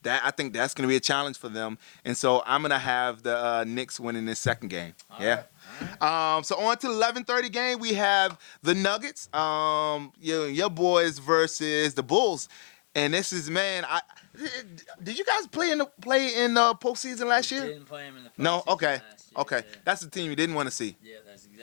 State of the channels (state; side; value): silent; right; 59 dB below the other